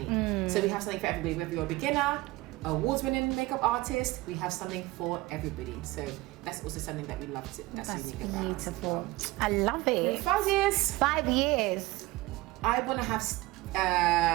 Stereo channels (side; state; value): left; quieter; 20.0 dB